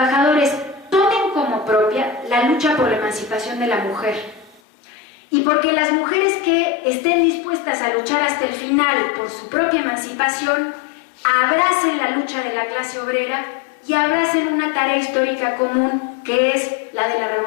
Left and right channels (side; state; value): right; drops out; at 4.6 s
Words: tomen como propia la lucha por la emancipación de la mujer. Y porque las mujeres que estén dispuestas a luchar hasta el final por su propia emancipación, abracen la lucha de la clase obrera y abracen una tarea histórica común que es la de la